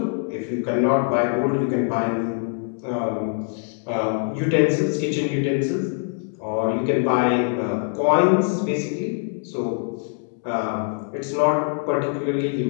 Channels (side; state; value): right; silent; 56 dB below the other